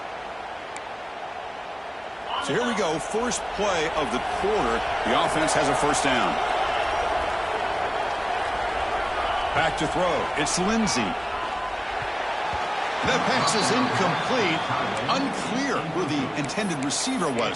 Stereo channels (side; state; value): both; identical; correlation 1.00